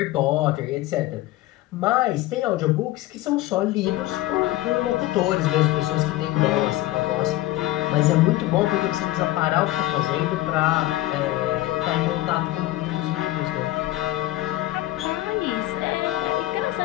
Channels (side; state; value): right; quieter; 16.4 dB